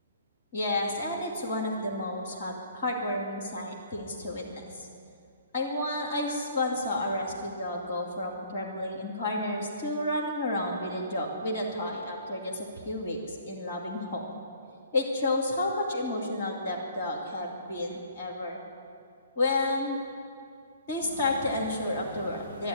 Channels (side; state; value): both; inverted; correlation -0.56